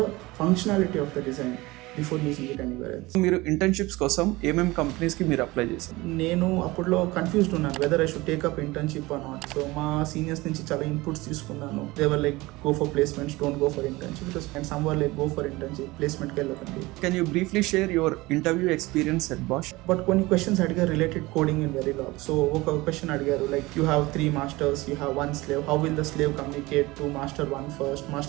functionality of the design before using it anywhere else. మీరు ఇంటర్న్షిప్స్ కోసం ఏమేమి కంపెనీస్కి మీరు అప్లై చేశారు? నేను అప్పుడులో కన్ఫ్యూజ్డ్ ఉన్నాను whether I should take up internship or not. So మా సీనియర్స్ నుంచి చాలా ఇన్పుట్స్ తీసుకున్నాను. They were like go for placements, don't go for internship. And some were like go for internship, ప్లేస్మెంట్కి వెళ్ళకండి. Can you briefly share your interview experience at Bosch? But కొన్ని questions అడిగారు related coding in Verilog. So ఒక question అడిగారు like you have 3 masters, you have 1 slave, how will the slave communicate to master 1 first,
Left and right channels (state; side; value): quieter; left; 21.1 dB